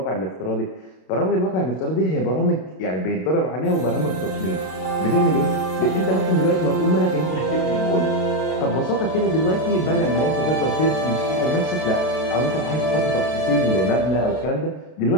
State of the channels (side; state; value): right; late; 32 ms